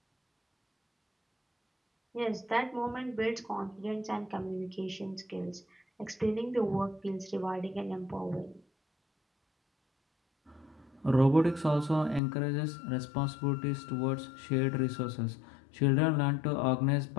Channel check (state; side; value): drops out; right; at 12.2 s